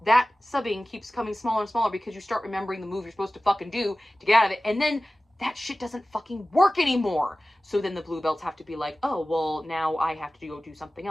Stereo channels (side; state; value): both; normal; correlation 0.96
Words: that subbing keeps coming smaller and smaller because you start remembering the move you're supposed to fucking do to get out of it. And then that shit doesn't fucking work anymore. So then the blue belts have to be like, oh, well, now I have to go do something